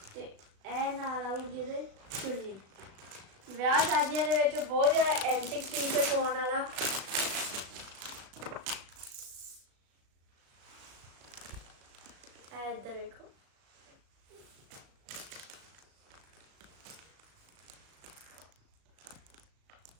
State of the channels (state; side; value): late; left; 36 ms